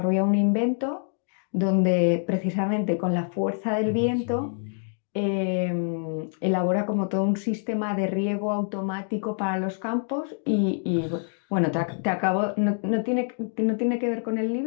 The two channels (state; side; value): silent; right; 61 dB below the other